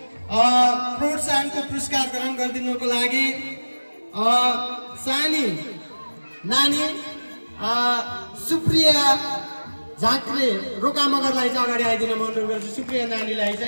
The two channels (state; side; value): inverted; both; correlation -1.00